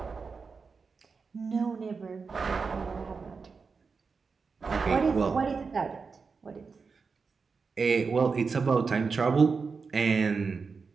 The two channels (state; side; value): quieter; left; 5.0 dB